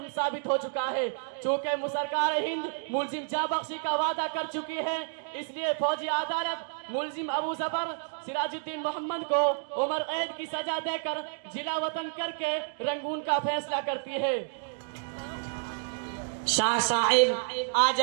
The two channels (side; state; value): left; silent; digital silence